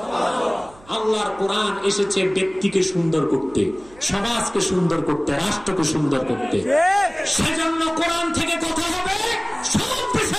আল্লাহর কোরআন এসেছে ব্যক্তিকে সুন্দর করতে, সমাজকে সুন্দর করতে, রাষ্ট্রকে সুন্দর করতে। সেজন্য কোরআন থেকে কথা হবে, সব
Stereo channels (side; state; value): right; noise; hum, 24 dB below the sound